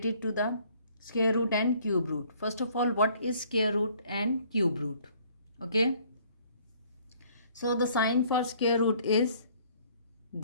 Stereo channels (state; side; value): inverted; both; correlation -0.59